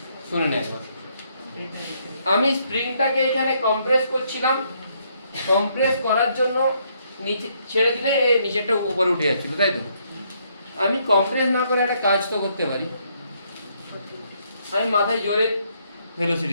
শুনে নে একবার। আমি স্প্রিংটাকে এখানে কম্প্রেস করছিলাম, কম্প্রেস করার জন্য নিচে ছেড়ে দিলে এই নিচেরটা উপরে উঠে যাচ্ছিল, তাই তো? আমি কম্প্রেস না করে একটা কাজ তো করতে পারি, আমি মাথায় জোরে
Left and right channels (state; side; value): inverted; both; correlation -0.72